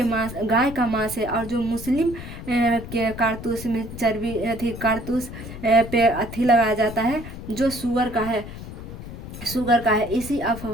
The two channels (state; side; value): noise; left; rumble, 11 dB below the sound